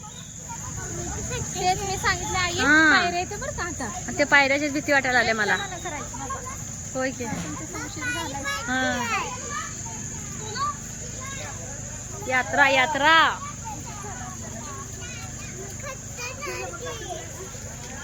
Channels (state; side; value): identical; both; correlation 1.00